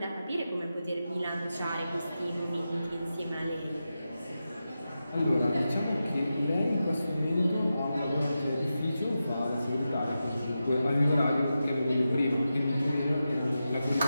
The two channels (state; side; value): inverted; both; correlation -0.91